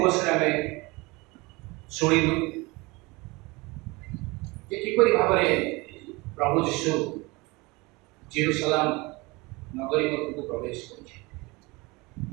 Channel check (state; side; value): quieter; left; 24.5 dB